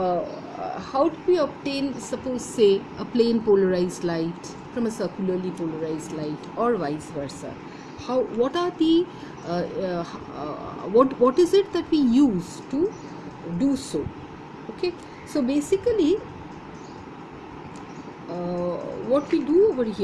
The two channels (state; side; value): identical; both; correlation 1.00